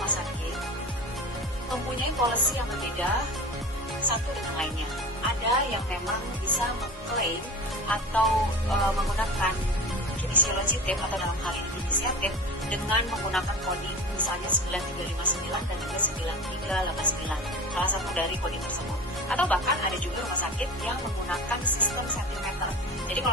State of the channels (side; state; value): both; normal; correlation 0.33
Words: sakit mempunyai policy yang berbeda satu dengan lainnya. Ada yang memang bisa mengklaim atau menggunakan kinesiologi tape atau dalam hal ini inisiatif dengan menggunakan coding misalnya 9359 dan juga 9389, salah satu dari coding tersebut. Atau bahkan ada juga rumah sakit yang menggunakan sistem sentimeter. Jadi